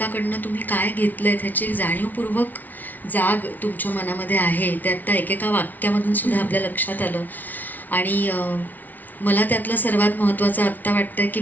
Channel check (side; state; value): right; late; 0.080 ms